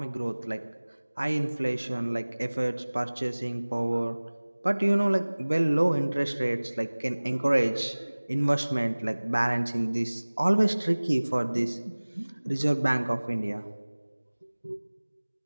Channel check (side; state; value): both; inverted; correlation -1.00